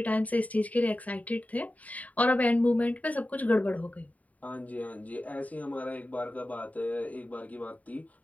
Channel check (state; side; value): late; right; 0.071 ms